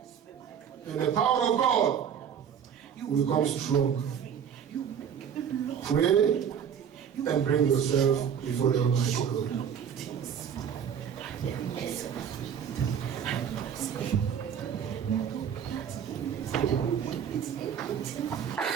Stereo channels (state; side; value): quieter; left; 8.1 dB